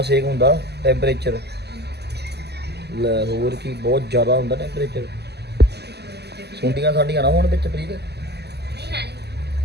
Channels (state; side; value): late; left; 0.49 ms